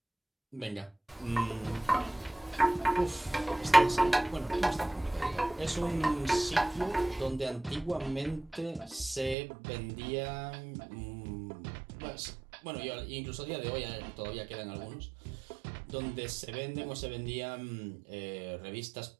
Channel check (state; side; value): drops out; left; at 9.3 s